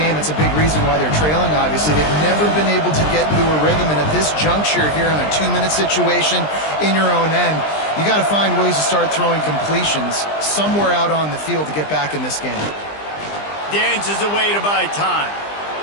It's a big reason why they're trailing, obviously. They've never been able to get into a rhythm, and at this juncture here on a 2-minute situation in your own end, you got to find ways to start throwing completions somewhere out on the field to get back in this game. Dances away to buy time.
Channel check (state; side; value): late; right; 20 ms